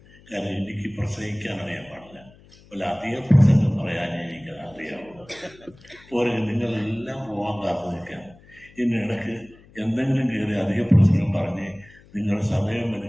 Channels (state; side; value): noise; left; hum, 25 dB below the sound